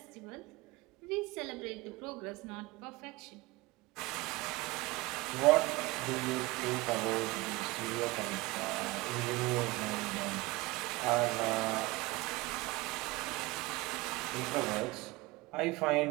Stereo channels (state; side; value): quieter; left; 22.0 dB